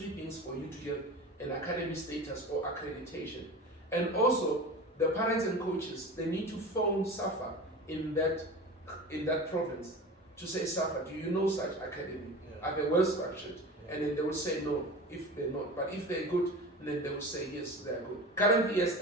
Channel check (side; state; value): both; normal; correlation 0.33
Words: things for you to get an academy status or accreditation. And also, the parents and coaches, they need to phone SAFA in that province to say, SAFA, do you know such academy? Are they well structured? And then they will say no if they're not. But if they're good, then they will say yes, they're good. Currently, as